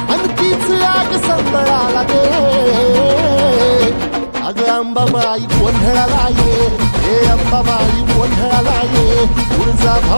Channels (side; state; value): both; inverted; correlation -1.00